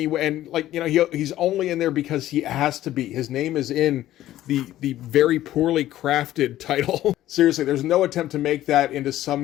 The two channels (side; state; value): right; quieter; 13.8 dB